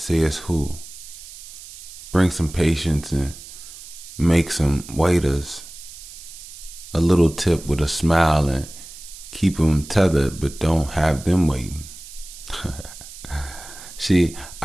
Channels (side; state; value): right; noise; hiss, 15 dB below the sound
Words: it's who. Bring some patience and make some waiters a little tip with a smile and keep them tethered, but don't have them waiting. See,